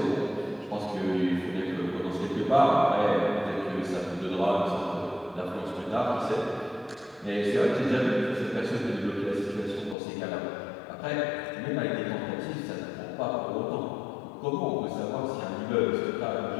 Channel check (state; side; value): drops out; right; at 10.0 s